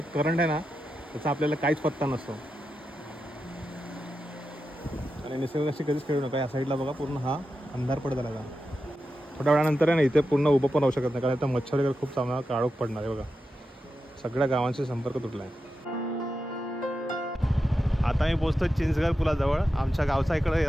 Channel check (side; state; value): both; normal; correlation 0.89